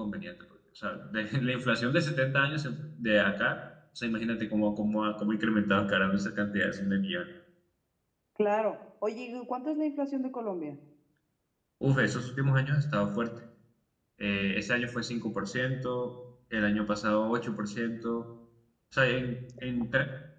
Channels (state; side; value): identical; both; correlation 1.00